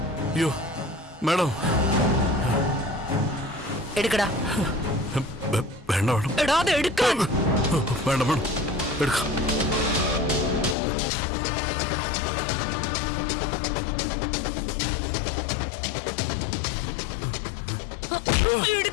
അയ്യോ മാഡം, എടുക്കടാ. വേണ്ട വേണം. എടാ അത് എടുക്കാൻ. വേണ്ട വേണം, എടുക്കാം.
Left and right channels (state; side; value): drops out; right; at 10.8 s